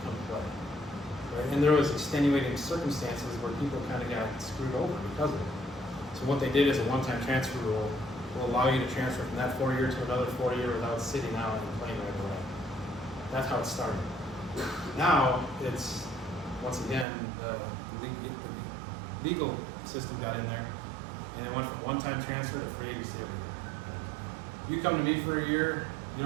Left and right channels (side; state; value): left; drops out; at 17.1 s